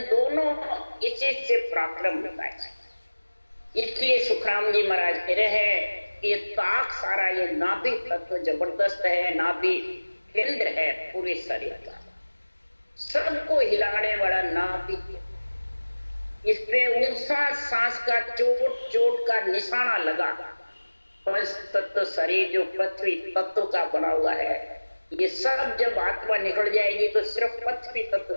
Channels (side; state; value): both; inverted; correlation -1.00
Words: दोनों इसी से प्रारंभ होता है। इसलिए सुखराम जी महाराज कह रहे हैं कि ये ताक सारा ये नाभि तत्व जबरदस्त है, नाभि केंद्र है पूरे शरीर का, सबको हिलाने वाला नाभि। इसपे ऊंचा सांस का चोट चोट का निशाना लगा। पंच तत्व शरीर जो पृथ्वी तत्व का बना हुआ है, ये सब जब आत्मा निकल जाएगी तो सिर्फ पृथ्वी तत्व